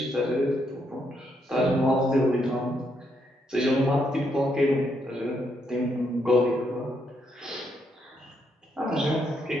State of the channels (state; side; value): normal; both; correlation 0.77